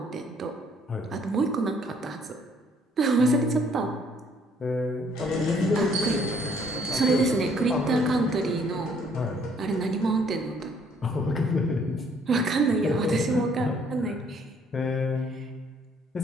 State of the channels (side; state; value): both; normal; correlation 0.63